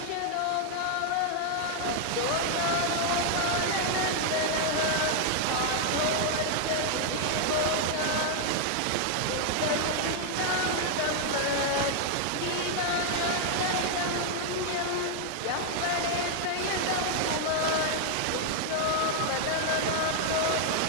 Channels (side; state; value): both; different; correlation 0.00